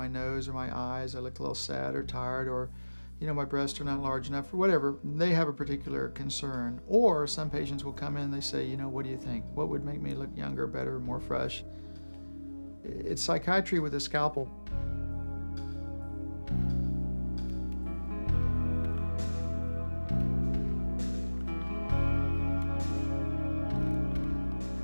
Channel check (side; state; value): both; inverted; correlation -1.00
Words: nose or my eyes, I look a little sad or tired, or my breasts are not large enough, or whatever. They have a particular concern. Or some patients will come in and they say, what do you think? What would make me look younger, better, more fresh? It's psychiatry with a scalpel.